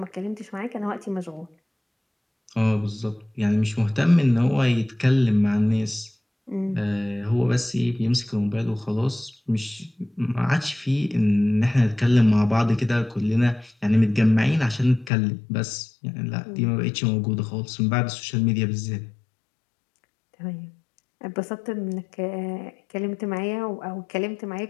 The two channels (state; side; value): drops out; right; at 15.1 s